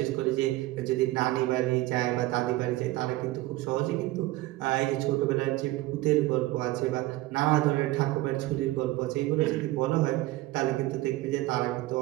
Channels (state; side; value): quieter; left; 18.2 dB